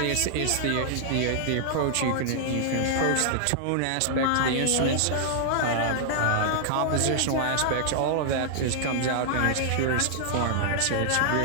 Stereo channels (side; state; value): both; different; correlation -0.01